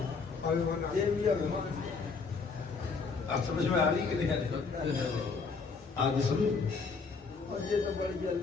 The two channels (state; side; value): quieter; right; 4.8 dB